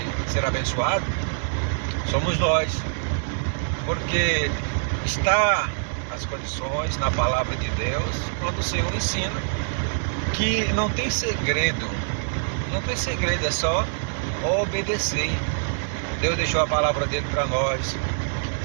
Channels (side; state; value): left; silent; digital silence